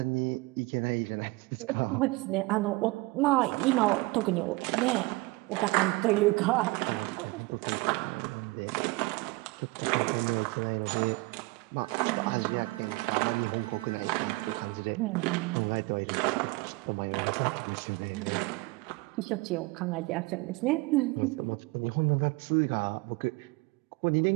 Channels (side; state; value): left; quieter; 23.6 dB